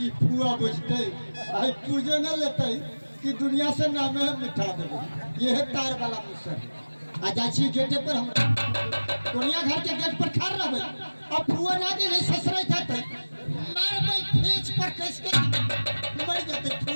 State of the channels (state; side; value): inverted; both; correlation -1.00